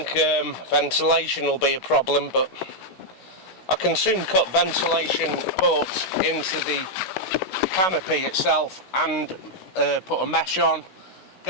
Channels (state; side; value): late; right; 16 ms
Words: ventilation will be a problem, but I can soon cut ventilation ports into the canopy itself and put a mesh on,